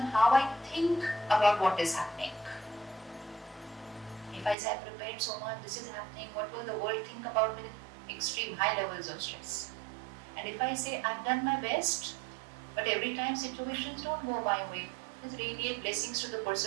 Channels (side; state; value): left; drops out; at 4.5 s